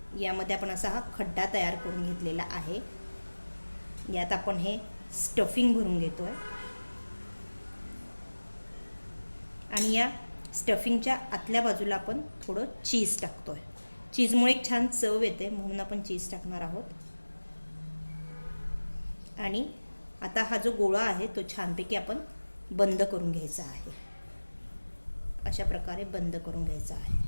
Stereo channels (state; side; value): inverted; both; correlation -1.00